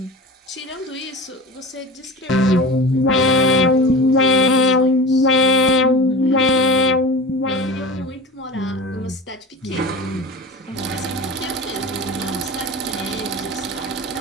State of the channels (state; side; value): normal; both; correlation 0.33